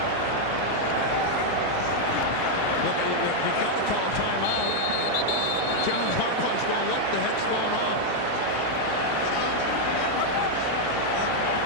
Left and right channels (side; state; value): both; different; correlation 0.00